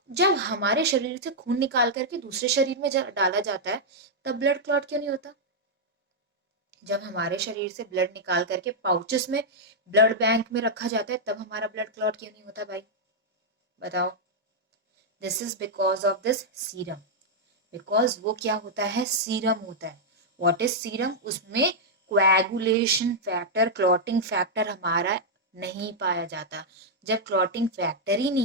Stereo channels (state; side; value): normal; both; correlation -0.05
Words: जब हमारे शरीर से खून निकाल करके दूसरे शरीर में डाला जाता है, तब ब्लड क्लॉट क्यों नहीं होता? जब हमारे शरीर से ब्लड निकाल करके पाउचेस में ब्लड बैंक में रखा जाता है, तब हमारा ब्लड क्लॉट क्यों नहीं होता भाई? बताओ। This is because of this serum. Because वो क्या होता है? सीरम होता है। What is serum? उसमें कोएगुलेशन फैक्टर, क्लॉटिंग फैक्टर हमारा नहीं पाया जाता। जब क्लॉटिंग फैक्टर ही